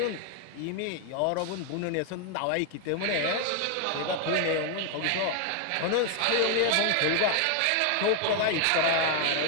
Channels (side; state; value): both; different; correlation 0.00